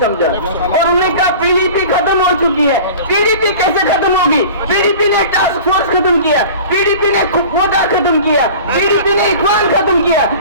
समझा और उन्होंने कहा पीडीपी खत्म हो चुकी है। पीडीपी कैसे खत्म होगी? पीडीपी ने टास्क फोर्स खत्म किया, पीडीपी ने कोटा खत्म किया, पीडीपी ने इखवान खत्म किया,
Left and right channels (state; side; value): inverted; both; correlation -0.40